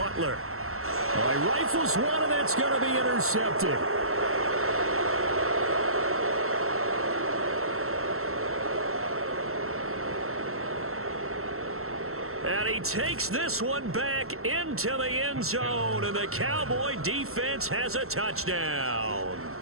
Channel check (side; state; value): left; late; 0.63 ms